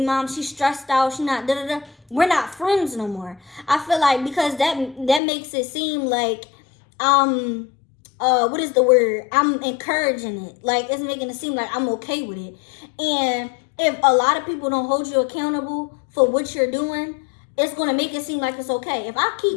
mom, she's stressed out, she not da da da, we're not friends no more. I feel like, because that makes it seem like what is the word? I'm encouraging it. Like, it's making it seem like I'm okay with it. And if a lot of people don't hold you accountable for what you're doing, it's going to make it seem like it's okay. If I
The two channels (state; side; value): drops out; right; at 5.2 s